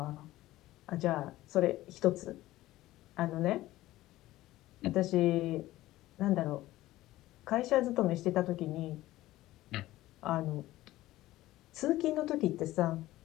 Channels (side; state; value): right; quieter; 16.3 dB